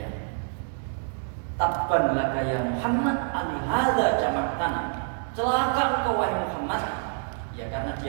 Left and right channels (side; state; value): left; silent; 60 dB below the other